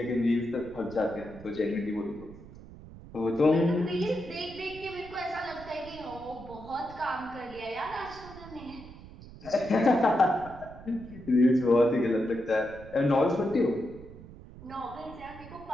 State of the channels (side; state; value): right; noise; rumble, 17 dB below the sound